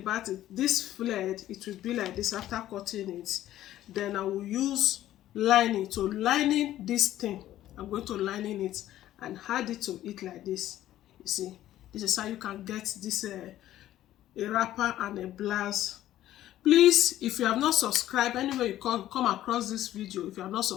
it, this flared, it will be like this after cutting it. Then I will use lining. So lining this thing, I'm going to lining it and add it to it like this. You see, this is how you can get this a wrapper and a blouse. Please, if you have not subscribed, anywhere you come across this video, if you have not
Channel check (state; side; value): quieter; right; 13.3 dB